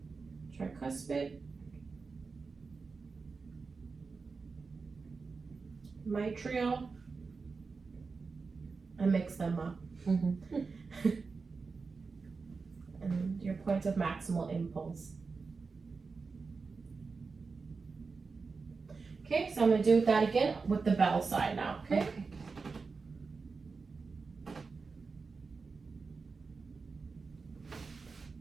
bit. Mitral. And mix them up. Mm-hmm. And your point of maximal impulse. Okay, so I'm gonna do that again with the bell side now, okay? Okay.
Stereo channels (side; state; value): left; quieter; 4.6 dB